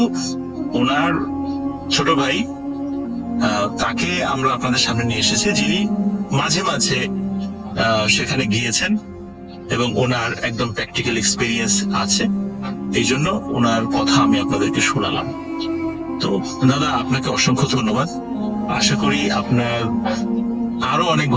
ওনার ছোট ভাই তাকে আমরা আপনাদের সামনে নিয়ে এসেছি, যিনি মাঝে মাঝে সেখানে গিয়েছেন এবং ওনার একদম প্র্যাকটিক্যাল এক্সপিরিয়েন্স আছে। এই জন্য ওনার কথা আমি আপনাদেরকে শোনালাম। তো দাদা আপনাকে অসংখ্য ধন্যবাদ। আশা করি আপনার আরো অনেক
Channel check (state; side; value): identical; both; correlation 1.00